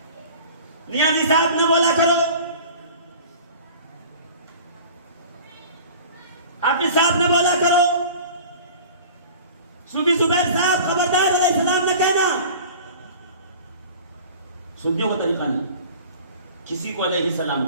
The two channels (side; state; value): both; inverted; correlation -0.42